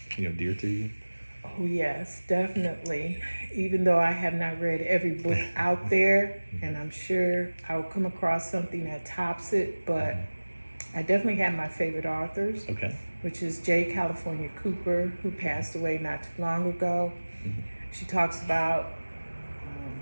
dear to you? Oh yes, definitely. Even though I have not read every book out there, and I'm sure I'll come across something that tops it, but I definitely have my favorite authors, which is J. California Cooper, who passed away not too long ago. She talks about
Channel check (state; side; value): inverted; both; correlation -1.00